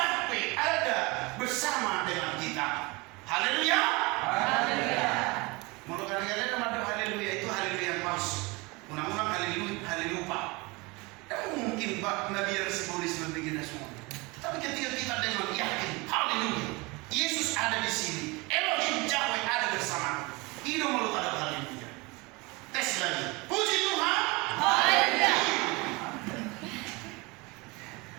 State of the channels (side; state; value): left; quieter; 25.5 dB